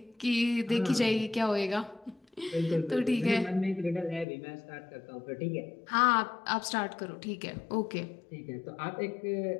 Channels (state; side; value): drops out; right; at 4.2 s